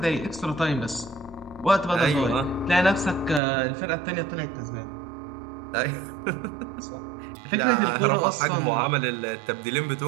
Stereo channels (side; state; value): left; drops out; at 3.4 s